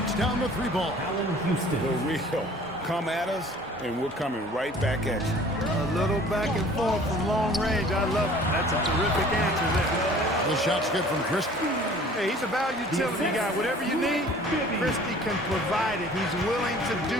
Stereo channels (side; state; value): both; normal; correlation 0.50